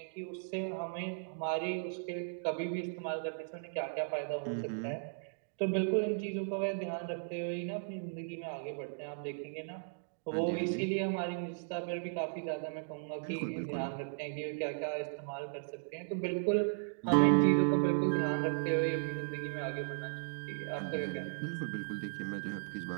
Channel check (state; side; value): silent; left; digital silence